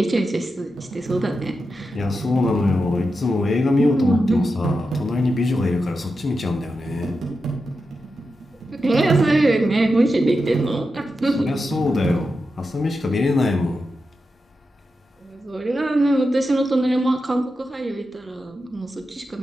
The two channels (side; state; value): both; normal; correlation 0.89